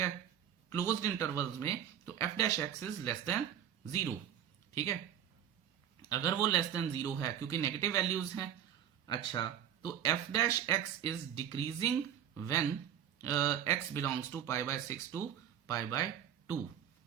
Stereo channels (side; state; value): left; quieter; 9.8 dB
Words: क्लोज्ड इंटरवल्स में, तो f dash x is less than 0, ठीक है। अगर वो लेस देन 0 है क्योंकि नेगेटिव वैल्यूज हैं, अच्छा, तो f dash x is decreasing when x belongs to pi by 6 to pi by 2।